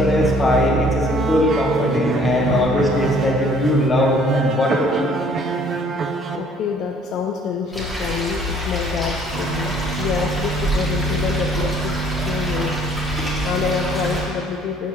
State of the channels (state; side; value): normal; both; correlation 0.58